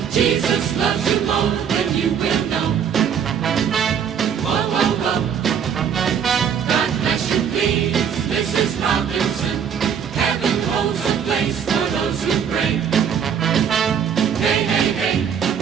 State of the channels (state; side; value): quieter; left; 7.8 dB